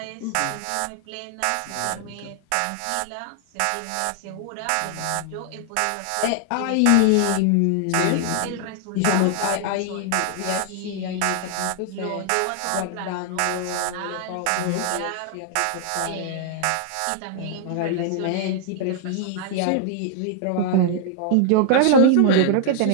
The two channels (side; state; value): both; different; correlation 0.00